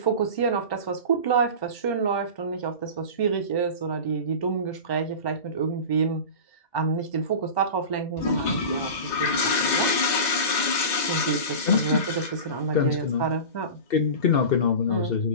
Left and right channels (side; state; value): right; late; 2.1 ms